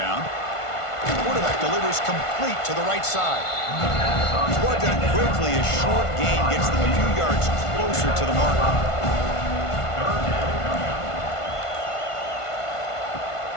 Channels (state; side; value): late; right; 1.5 ms